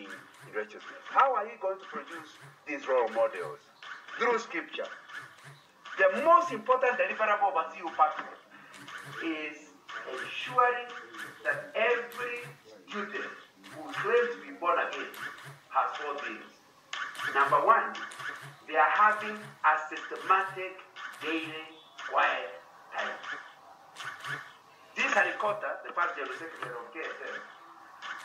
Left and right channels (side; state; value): both; identical; correlation 1.00